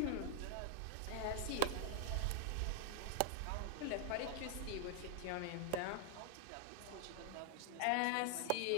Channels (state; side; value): different; both; correlation -0.01